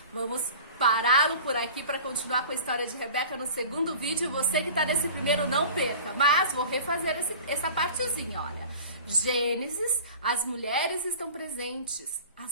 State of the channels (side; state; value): both; inverted; correlation -0.40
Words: vamos pará-lo por aqui para continuar com a história de Rebeca no segundo vídeo. Você que tá nesse primeiro, não perca, mas vou refazer essa partezinha, olha. Gênesis, as mulheres estão presentes,